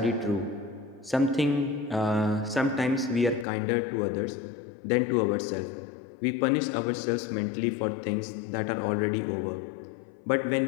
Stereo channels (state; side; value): drops out; right; at 3.5 s